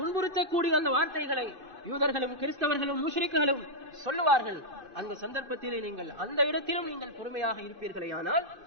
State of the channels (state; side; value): late; left; 2.5 ms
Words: அந்த வார்த்தைகளை யூதர்களும் கிறிஸ்தவர்களும் முஷ்ரிக்குகளும் சொல்லுவார்கள். அந்த சந்தர்ப்பத்திலே நீங்கள் அந்த இடத்திலும் நீங்கள் பொறுமையாக இருப்பீர்களே, ஆனால்